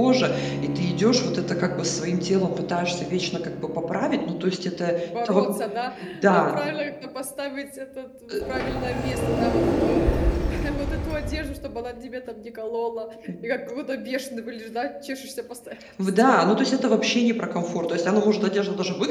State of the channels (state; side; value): identical; both; correlation 1.00